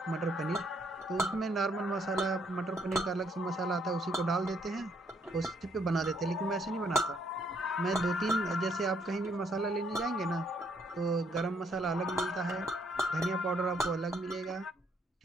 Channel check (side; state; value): both; normal; correlation 0.70